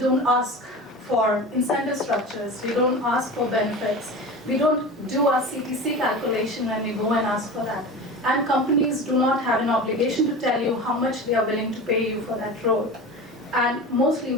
ask for incentive structures, we don't ask for benefits, we don't do our CTC calculation when we go and ask for that. And companies do not have an obligation to tell you how much they are willing to pay you for that role. And mostly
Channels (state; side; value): normal; both; correlation 0.31